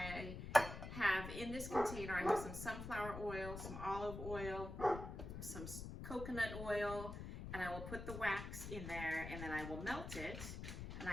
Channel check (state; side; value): noise; left; rumble, 7 dB below the sound